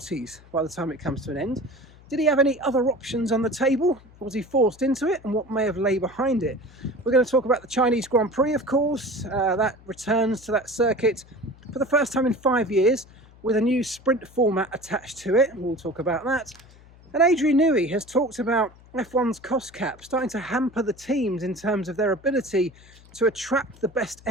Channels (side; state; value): left; noise; hum, 24 dB below the sound